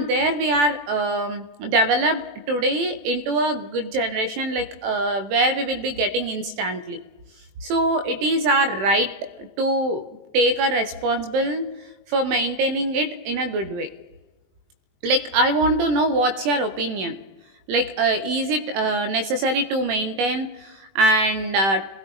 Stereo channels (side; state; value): left; late; 21 ms